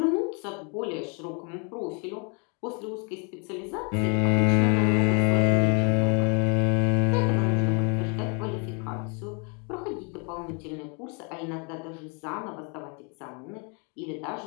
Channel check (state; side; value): quieter; right; 35.5 dB